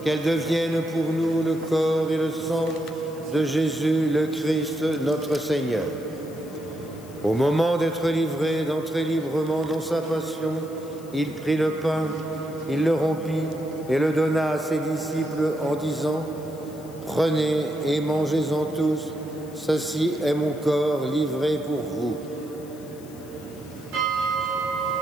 qu'elles deviennent pour nous le corps et le sang de Jésus, le Christ, notre Seigneur. Au moment d'être livré, d'entrer librement dans sa passion, il prit le pain, il le rompit et le donna à ses disciples en disant: prenez et mangez-en tous, ceci est mon corps livré pour vous.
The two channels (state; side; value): noise; left; hiss, 23 dB below the sound